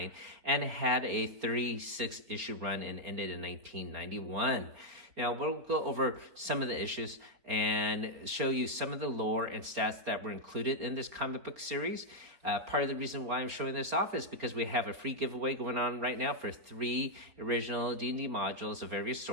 and had a 36-issue run and ended in 1991. Now, we'll go over some of the issues and show you some of the lore and stats that were included in this comic book series. Part of the reason why I'm showing this off is because we have a free giveaway going on right now for 3 original D&D modules of various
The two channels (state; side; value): late; left; 4.3 ms